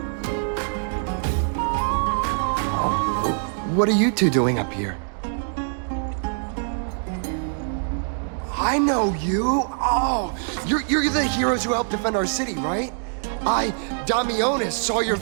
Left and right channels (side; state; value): left; silent; 63 dB below the other